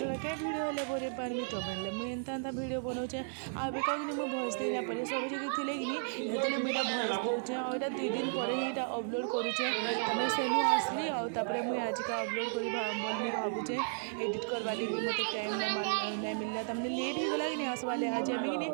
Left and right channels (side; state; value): left; silent; digital silence